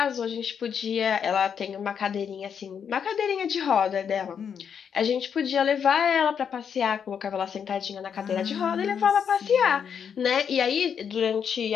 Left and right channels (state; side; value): quieter; right; 7.4 dB